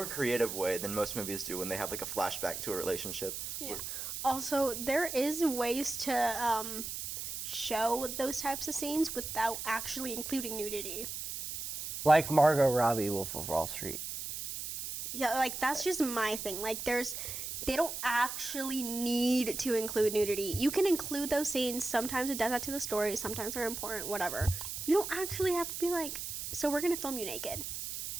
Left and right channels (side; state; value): right; noise; hiss, 6 dB below the sound